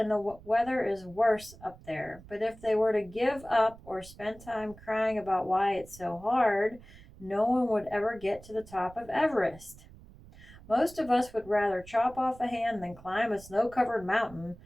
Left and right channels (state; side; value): noise; right; rumble, 20 dB below the sound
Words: the weather is worse up there. But if they were to give up or spend time crying about why it's so hard, no one would ever get to the top of Everest. Most of us would rather chop off a hand than climb a snow-covered mountain,